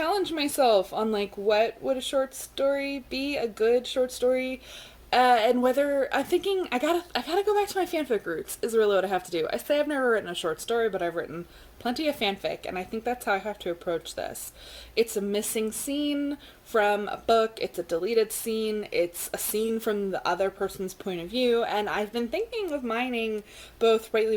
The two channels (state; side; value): identical; both; correlation 1.00